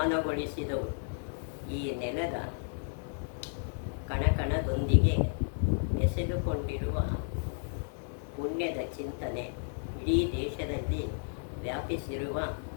ಈ ನೆಲದ ಕಣಕಣದೊಂದಿಗೆ ಬೆಸೆದುಕೊಂಡಿರುವ ಪುಣ್ಯದ ಚಿಂತನೆ ಇಡೀ ದೇಶದಲ್ಲಿ ವ್ಯಾಪಿಸಿರುವ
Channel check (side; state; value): right; silent; 56 dB below the other